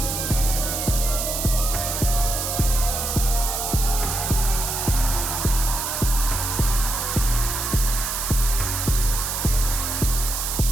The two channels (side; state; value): right; noise; hiss, 2 dB below the sound